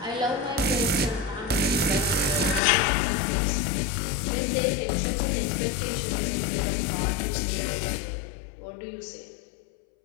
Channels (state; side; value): drops out; right; at 2.6 s